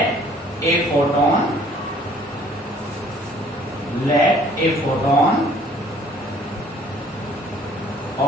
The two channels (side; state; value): both; normal; correlation 0.56